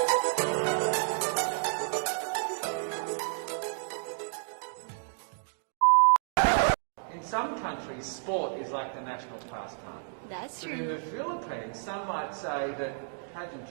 In some countries, sport is like the national pastime. That's But in true. the Philippines, some might say that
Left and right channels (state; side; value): silent; left; digital silence